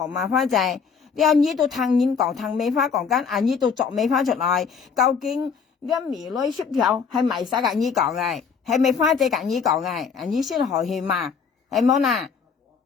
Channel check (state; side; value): quieter; right; 6.0 dB